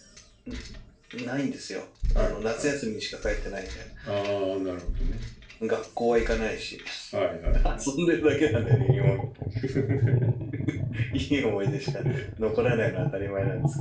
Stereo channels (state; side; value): identical; both; correlation 1.00